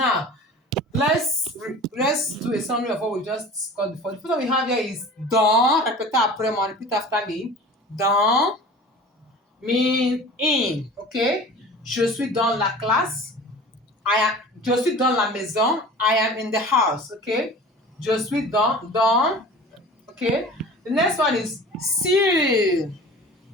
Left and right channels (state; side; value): normal; both; correlation 0.40